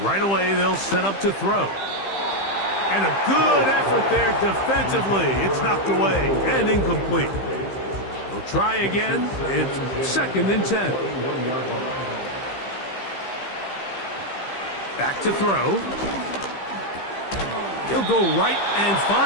Right away, they'll set up to throw. And a good effort there defensively. It's knocked away and incomplete. They'll try again. It's 2nd and 10. Back to throw. He'll go right and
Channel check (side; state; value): right; late; 15 ms